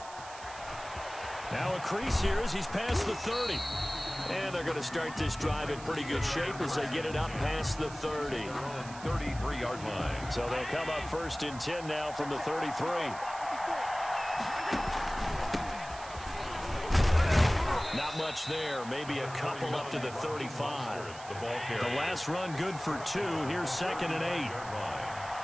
Now a crease here as he's past the 30. And they're going to start this drive in pretty good shape as they get it up past the 30. 33-yard line. So they'll come up 1st and 10 now from the 33. Not much there. Maybe a couple up to the 35. The last run good for 2. Here's 2nd and 8.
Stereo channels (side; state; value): right; noise; hiss, 16 dB below the sound